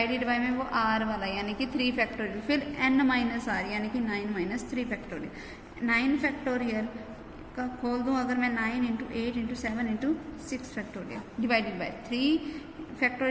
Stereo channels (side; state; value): both; identical; correlation 1.00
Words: बाय में वो r वाला यानी कि 3 फैक्टोरियल, फिर n माइनस आर यानी कि 9 माइनस 3 फैक्टोरियल। 9 फैक्टोरियल का खोल दूँ अगर मैं 9 into 8 into 7 into 6 factorial divided bye 3